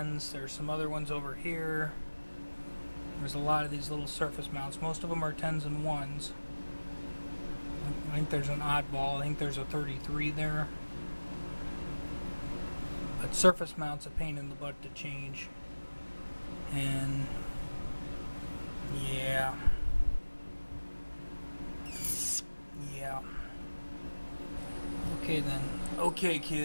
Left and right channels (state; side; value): inverted; both; correlation -1.00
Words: There's some other ones over here. There's a lot of these little surface mounts. Most of them are 10s and 1s. I think there's an oddball. I think there's a 33 there. But surface mount's a pain in the butt to change. And yeah. Okay then. Okay